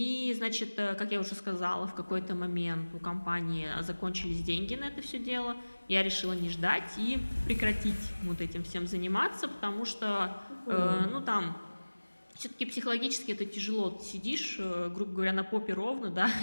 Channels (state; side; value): inverted; both; correlation -1.00